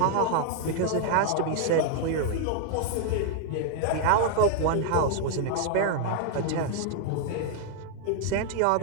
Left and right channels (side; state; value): both; different; correlation 0.00